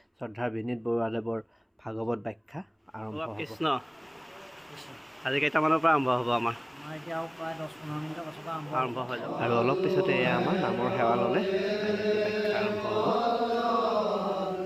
শ্ৰদ্ধাৰ বিনীত বৰুৱাদেৱৰ ভাগৱত ব্যাখ্যা আৰম্ভ হ'ব। কৃষ্ণ আজি কেইটামানৰ পৰা আৰম্ভ হ'ব? আমাৰ এতিয়া প্ৰায় 10-15 মিনিটৰ পাছৰ পৰা আৰম্ভ হৈ যাব আৰু অলপ পিছতে এয়া আমাৰ নামৰ সেৱা ল'লে ব্যাখ্যা আৰম্ভ হ'ব।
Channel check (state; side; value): identical; both; correlation 1.00